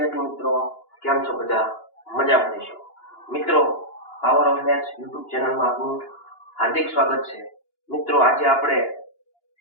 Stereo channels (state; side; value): late; right; 2.9 ms